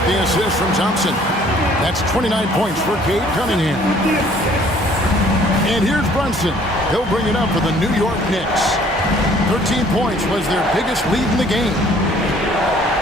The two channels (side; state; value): both; normal; correlation 0.57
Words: the assist from Thompson. That's 29 points for Cade Cunningham. And here's Brunson. He'll bring it up for the New York Knicks. 13 points was their biggest lead in the game.